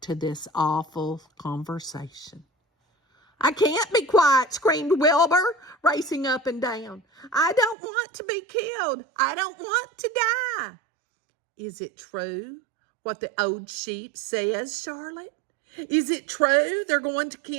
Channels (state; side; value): drops out; left; at 7.8 s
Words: to this awful conversation. I can't be quiet, screamed Wilbur, racing up and down. I don't want to be killed. I don't want to die. Is it true what the old sheep says, Charlotte? Is it true they're going to